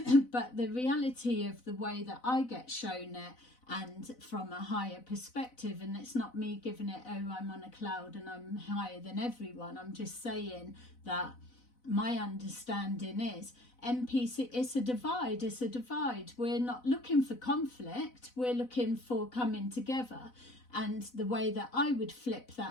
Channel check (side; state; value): right; late; 4.0 ms